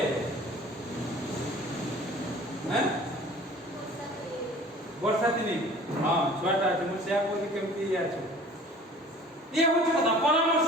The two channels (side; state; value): both; normal; correlation 0.46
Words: ଆସିବ ବର୍ଷା ଦିନେ ହଁ ଛୁଆଟା ଅଛି ମୁଁ ସେୟା କହୁଛି କେମିତି ଇଏ ଅଛି ଇଏ ହେଉଛି କଥା